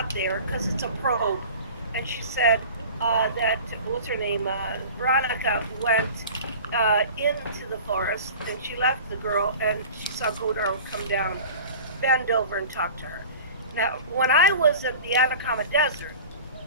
it there because it's a probe, and she said that what's her name, Veronica went into the forest, and she left the girl, and she saw Godar come down, bend over, and talk to her. Now, when I was at the Atacama Desert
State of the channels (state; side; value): inverted; both; correlation -0.39